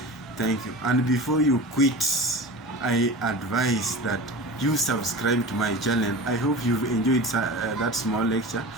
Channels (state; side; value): normal; both; correlation 0.32